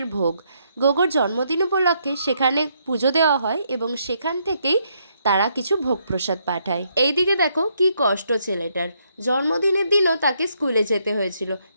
ভোগ। গোগোর জন্মদিন উপলক্ষে সেখানে পুজো দেওয়া হয় এবং সেখান থেকেই তারা কিছু ভোগ প্রসাদ পাঠায়। এইদিকে দেখো কি কষ্ট ছেলেটার, জন্মদিনের দিনও তাকে স্কুলে যেতে হয়েছিল,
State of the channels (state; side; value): inverted; both; correlation -0.74